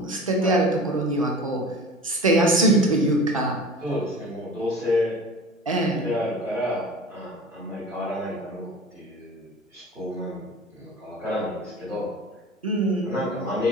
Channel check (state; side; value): normal; both; correlation 0.39